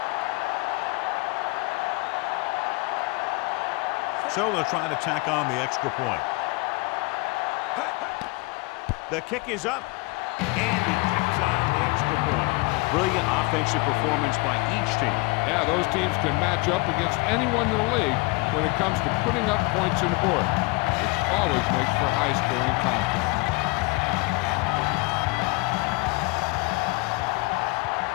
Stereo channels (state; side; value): quieter; right; 26.1 dB